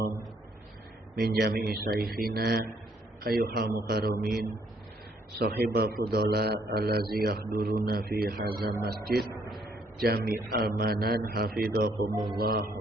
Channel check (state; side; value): normal; both; correlation 0.68